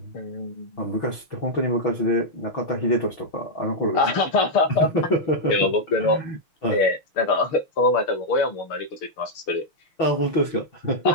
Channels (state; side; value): late; right; 6.2 ms